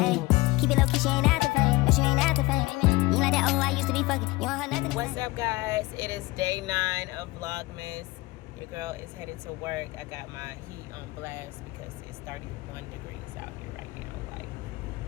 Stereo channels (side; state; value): right; quieter; 21.5 dB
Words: keep it low key, she ain't after fame. No, she ain't after fame. You ain't like that, oh, I used to be fucking. You don't have nothing. What's up, guys? It is day 9 of Vlogmas. Your girl is headed to work. I got my heat on blast because it's 31 degrees out here right now. Like,